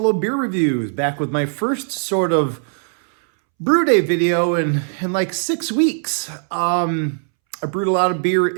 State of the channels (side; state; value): left; silent; 66 dB below the other